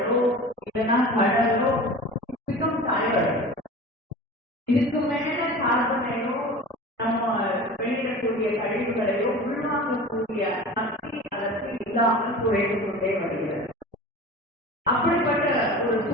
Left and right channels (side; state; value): both; normal; correlation 0.36